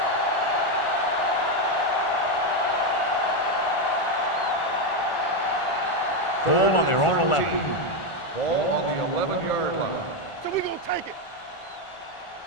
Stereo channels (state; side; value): late; right; 1.4 ms